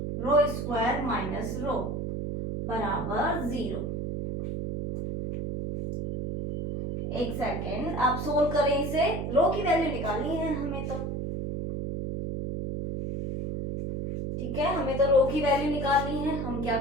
square minus rho बराबर 0। एक सेकेंड, आप सोल्व करें इसे, रो की वैल्यू निकालनी है हमें तो, ठीक है। हमें तो रो की वैल्यू निकालनी है। हम क्या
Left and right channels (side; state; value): right; noise; hum, 3 dB below the sound